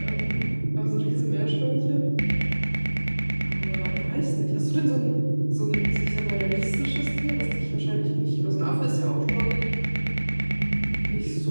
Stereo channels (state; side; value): inverted; both; correlation -1.00